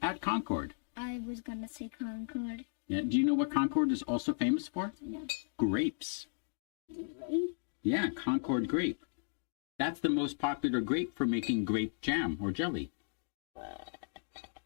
at Concord. I was gonna say Concord. Yeah. Do you know what Concord is also famous for? No. Grapes. Right? Yeah, Concord grape. That's the most popular grape for making grape jam or jelly.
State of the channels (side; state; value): right; silent; digital silence